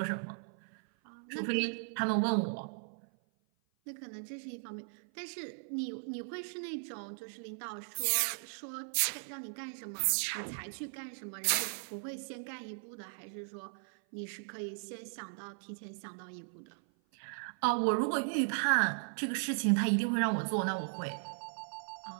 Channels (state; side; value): silent; left; 53 dB below the other